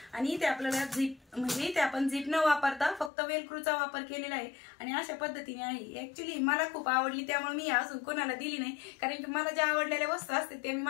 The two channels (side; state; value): right; drops out; at 3.1 s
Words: आणि इथे आपल्याला झिप म्हणजे इथे आपण झिप न वापरता फक्त वेलक्रूचा वापर केलेला आहे आणि अशा पद्धतीने आहे। ऍक्च्युली मला खूप आवडली, त्यामुळे मी अजून कोणाला दिली नाही, कारण की मला ज्या आवडलेल्या वस्तू असते ते मी